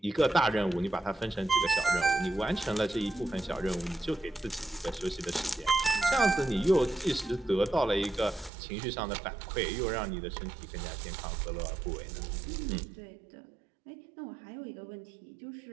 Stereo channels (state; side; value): drops out; left; at 8.5 s